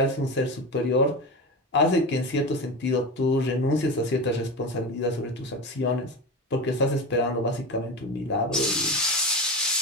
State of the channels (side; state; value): both; normal; correlation 0.24